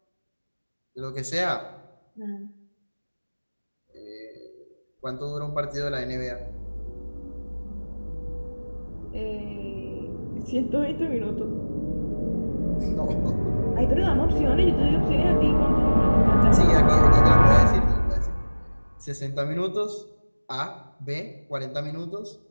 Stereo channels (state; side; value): inverted; both; correlation -1.00